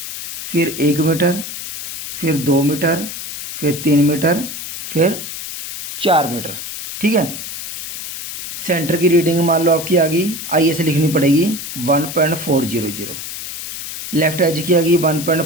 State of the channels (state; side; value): noise; left; hiss, 8 dB below the sound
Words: फिर 1 मीटर, फिर 2 मीटर, फिर 3 मीटर, फिर 4 मीटर, ठीक है। सेंटर की रीडिंग मान लो आपकी आ गई, IS लिखनी पड़ेगी 1.400, लेफ्ट एज की आ गई